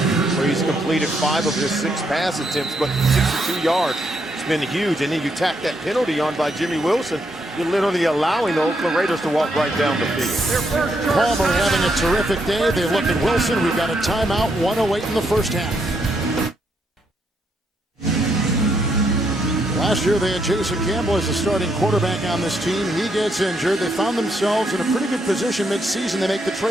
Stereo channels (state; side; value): normal; both; correlation 0.77